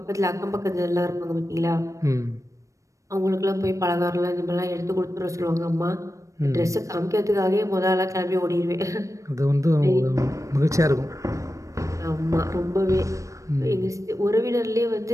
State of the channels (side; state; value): left; late; 0.15 ms